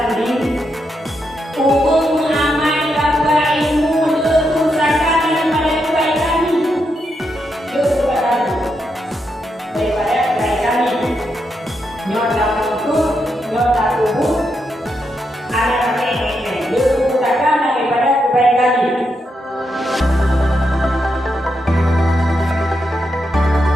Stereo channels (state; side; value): normal; both; correlation 0.83